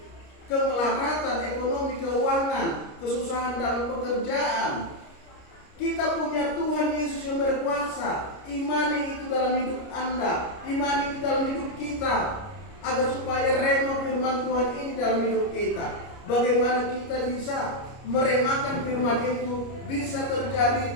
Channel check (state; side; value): late; right; 29 ms